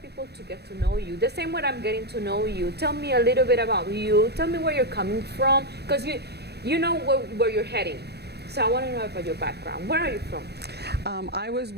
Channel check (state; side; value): late; left; 0.48 ms